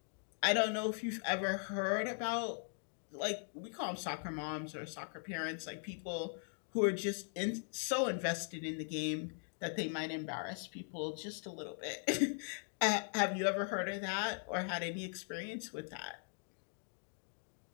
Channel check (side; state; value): right; silent; 51 dB below the other